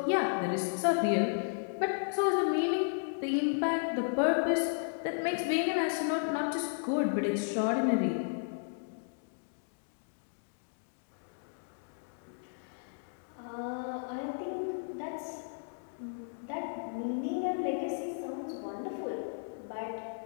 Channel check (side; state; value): right; silent; digital silence